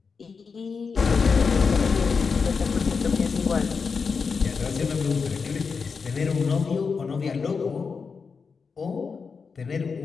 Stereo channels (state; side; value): quieter; right; 5.3 dB